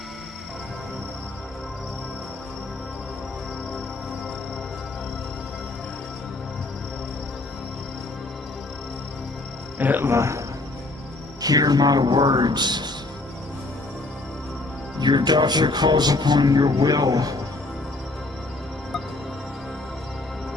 Etla, hear my words. Your daughter calls upon your will.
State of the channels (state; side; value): quieter; right; 3.0 dB